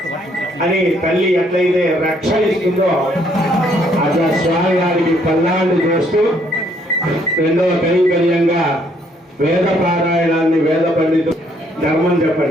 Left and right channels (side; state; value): both; normal; correlation 0.68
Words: అని తల్లి ఎట్లయితే రక్షణ ఇస్తుందో అట్లా స్వామి గారికి పల్లాళ్ళు చేస్తూ రెండవ కైంకర్యంగా వేద పారాయణాన్ని వేద పండితు ధర్మం